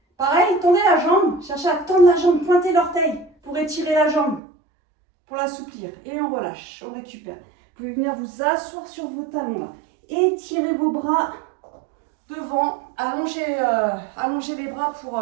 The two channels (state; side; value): drops out; left; at 4.4 s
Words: pareil, tendez la jambe, cherchez à tendre la jambe, pointez l'orteil pour étirer la jambe, pour l'assouplir. Et on relâche, on récupère. Vous pouvez venir vous asseoir sur vos talons là. Étirez vos bras devant, allongez les bras pour